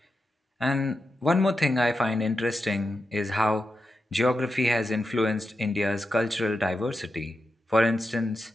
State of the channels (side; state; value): both; normal; correlation 0.88